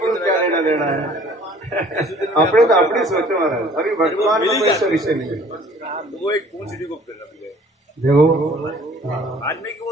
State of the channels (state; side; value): normal; both; correlation 0.53